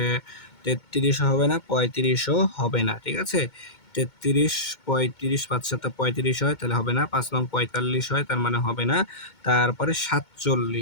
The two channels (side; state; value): right; late; 2.2 ms